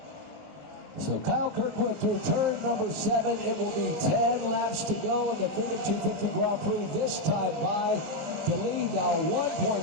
So Kyle Kirkwood through turn number 7. It will be 10 laps to go in the Freedom 250 Grand Prix, this time by the lead now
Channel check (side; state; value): left; late; 19 ms